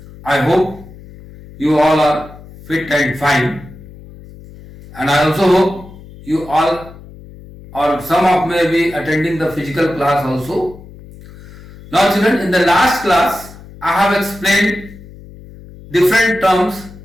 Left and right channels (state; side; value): noise; left; hum, 19 dB below the sound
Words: I hope you all are fit and fine, and I also hope you all or some of may be attending the physical class also. Now, children, in the last class, I have explained different terms